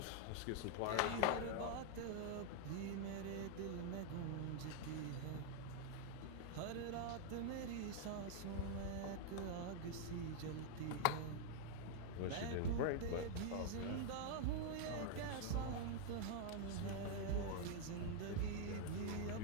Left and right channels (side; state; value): both; different; correlation 0.00